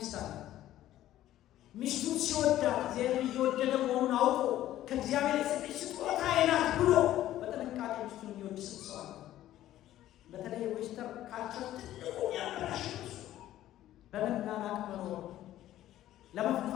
አለ? ሚስቱን ሲወዳት እግዚአብሔር እየወደደ መሆኑን አውቆ ከእግዚአብሔር የሰጠች ስጦታዬ ናት ብሎ በጥንቃቄ ሚስቱን የሚወድ ሰው አለ። በተለይ ዌስተርን ካልቸር ትልቁ ያበላሽ በመናናቅ መኖር፣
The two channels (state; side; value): quieter; right; 13.5 dB